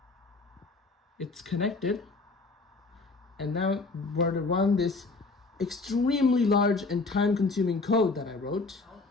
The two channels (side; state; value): right; quieter; 3.7 dB